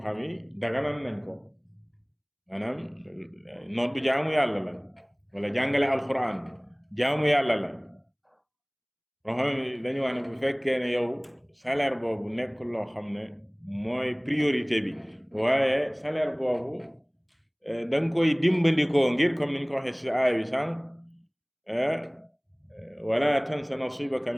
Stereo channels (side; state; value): both; identical; correlation 1.00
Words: yi daganal nañ ko maanaam nodd jaamu yàlla la wala jàngale alquran jaamu yàlla la loo xam ne dañu wax ne bu fekkee ne yow salaire boobu nekkul loo xam ne mooy priorité bi waaye salaire boobu da nga koy dimbandikoo ngir comme niñ ko waxee ci aaya bi sànq wala tansa nasibaka